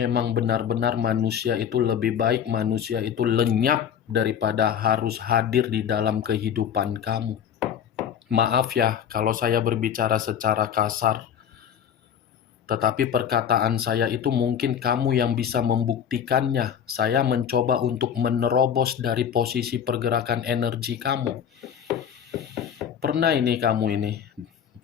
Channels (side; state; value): right; quieter; 8.6 dB